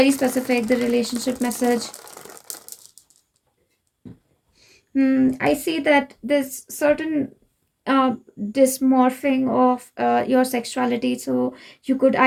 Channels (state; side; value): identical; both; correlation 1.00